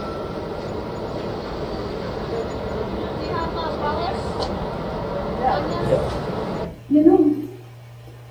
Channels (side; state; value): both; identical; correlation 1.00